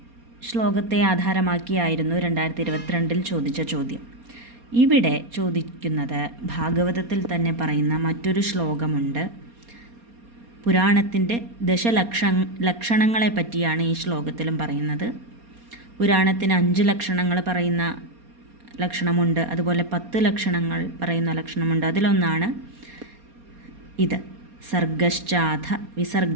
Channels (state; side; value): late; left; 4.2 ms